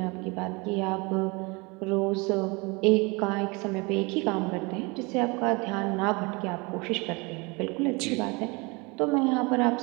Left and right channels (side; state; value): left; quieter; 27.4 dB